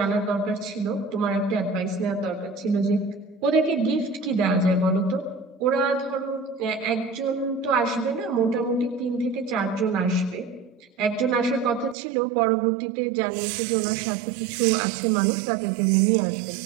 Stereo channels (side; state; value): left; drops out; at 12.0 s